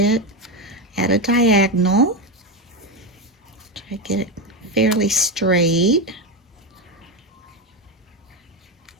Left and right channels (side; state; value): both; normal; correlation 0.12